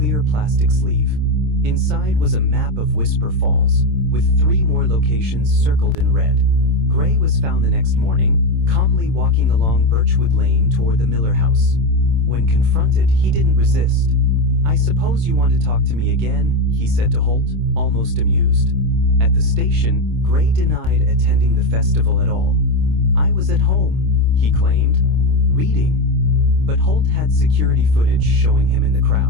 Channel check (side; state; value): left; late; 26 ms